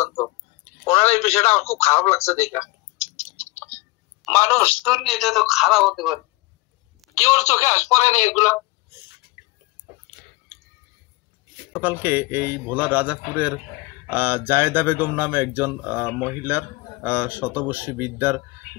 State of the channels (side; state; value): right; quieter; 22.7 dB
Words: ওনার এই বিষয়টা আমার খুব খারাপ লাগছে দেখা। মানুষ দুর্নীতি তো খারাপ হতে পারে, কেউ চোখে আস পড়ে না এগুলা। সকালকে এই ভোলার রাজাপুরের জায়েদা বেগম নামে একজন মহিলার শতবর্ষী বিদ্যার